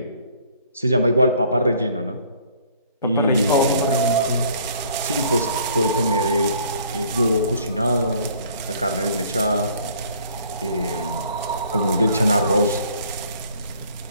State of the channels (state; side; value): inverted; both; correlation -0.57